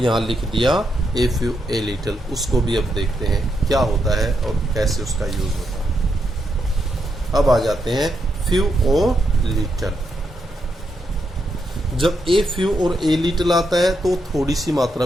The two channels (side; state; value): both; normal; correlation 0.81